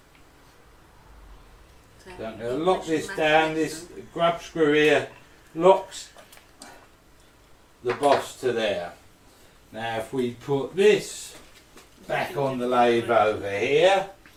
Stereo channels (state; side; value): identical; both; correlation 1.00